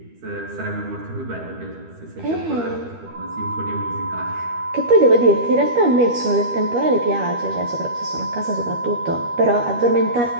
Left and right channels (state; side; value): late; left; 13 ms